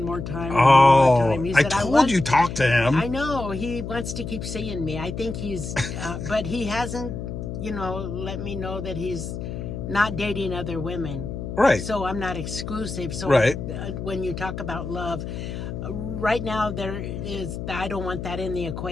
more time. And Oh, one more time. He I said, told want- you talk to him. I know. He wants to keep seeing me. I think he's, but he hasn't, let me know that he's not dating other women. Right. So I'm not exclusive. So Right. When you talk about love, right now I don't want that in the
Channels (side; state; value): left; noise; hum, 6 dB below the sound